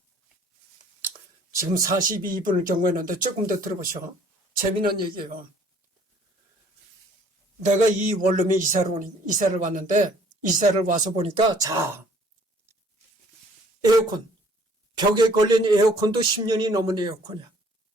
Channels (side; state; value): both; normal; correlation 0.58